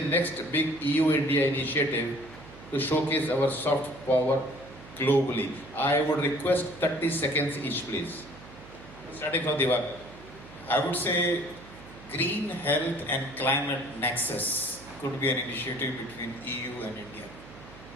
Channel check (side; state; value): right; noise; hum, 19 dB below the sound